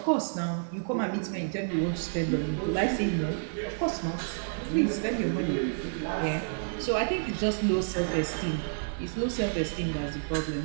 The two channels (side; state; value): left; silent; 58 dB below the other